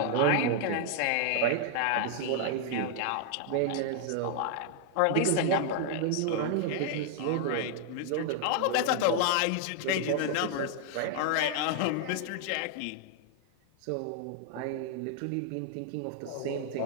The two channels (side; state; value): both; different; correlation 0.00